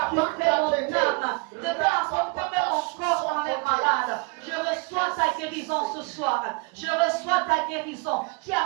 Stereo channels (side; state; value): left; quieter; 31.3 dB